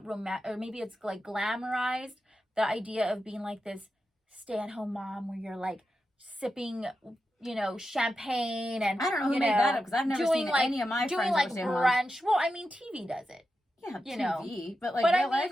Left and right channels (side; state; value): both; normal; correlation 0.89